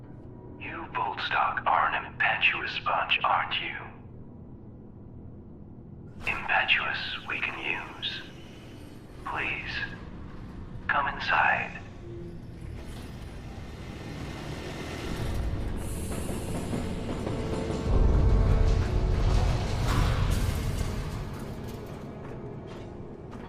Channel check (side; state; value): both; identical; correlation 1.00